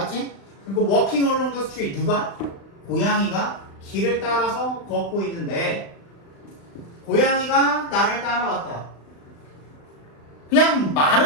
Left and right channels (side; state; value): right; late; 35 ms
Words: 그리고 walking along the street 누가? 고양이가 길을 따라서 걷고 있는데 고양이가 나를 따라왔다. 그냥